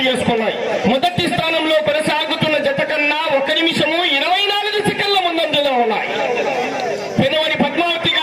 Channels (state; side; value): identical; both; correlation 1.00